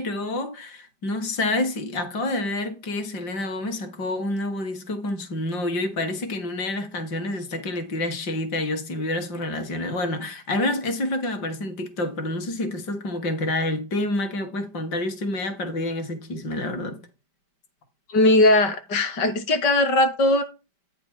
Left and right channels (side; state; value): right; late; 5.1 ms